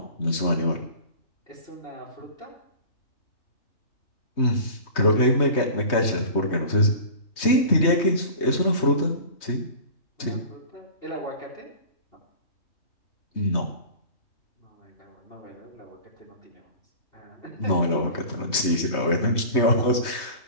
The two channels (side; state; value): right; late; 3.2 ms